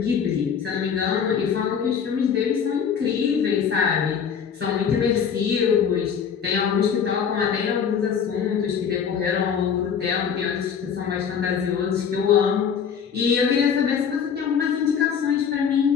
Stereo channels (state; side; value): quieter; right; 7.3 dB